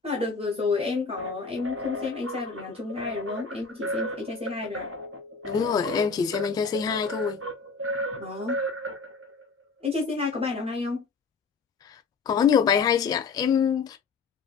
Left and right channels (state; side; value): quieter; right; 5.0 dB